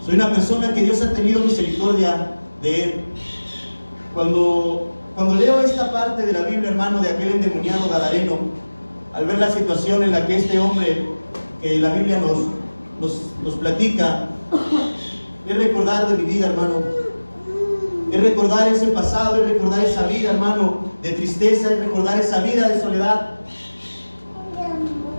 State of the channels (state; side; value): inverted; both; correlation -1.00